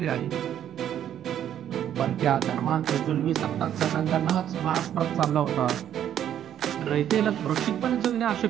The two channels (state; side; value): quieter; left; 10.3 dB